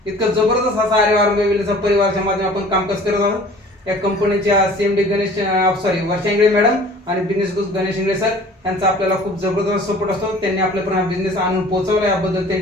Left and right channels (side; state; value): both; normal; correlation 0.47